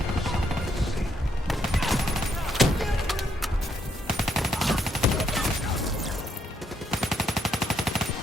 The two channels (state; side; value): normal; both; correlation 0.75